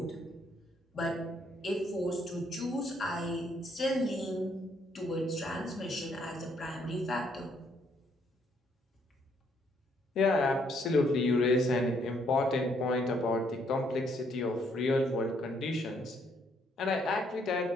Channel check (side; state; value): both; normal; correlation 0.70